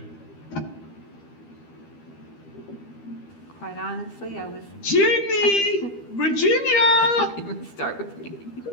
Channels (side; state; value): right; late; 12 ms